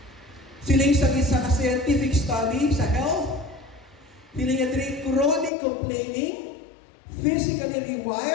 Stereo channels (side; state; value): right; drops out; at 5.5 s